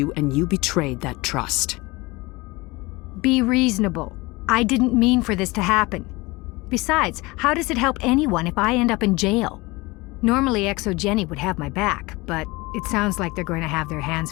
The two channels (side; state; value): right; quieter; 22.8 dB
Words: and you betrayed that trust. Be reasonable. I didn't mean for this to happen. Besides, how does it help anyone if I end up in jail? Normally ExoGeni would have my back, but it sounds like they're going to have their hands